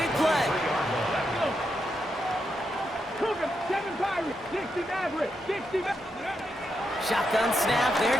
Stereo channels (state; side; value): normal; both; correlation 0.83